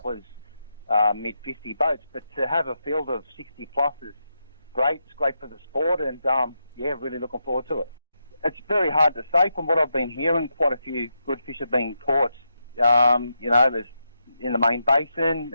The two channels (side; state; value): both; inverted; correlation -0.85